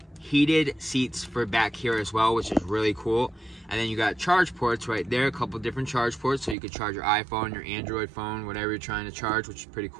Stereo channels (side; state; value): left; drops out; at 6.6 s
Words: heated seats for back here as well, which is really cool. And then you got charge ports right there, a couple different charge ports, so you could charge your iPhone, your Android phone, whatever you're trying to charge, which is pretty